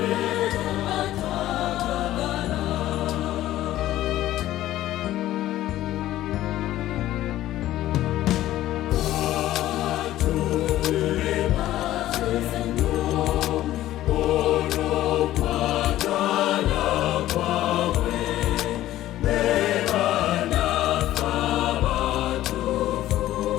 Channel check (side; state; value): right; quieter; 14.3 dB